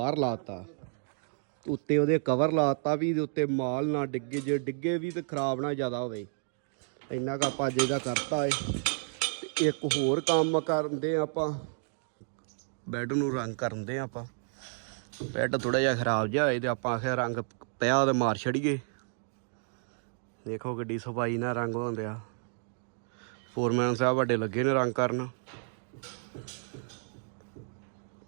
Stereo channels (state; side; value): silent; left; 57 dB below the other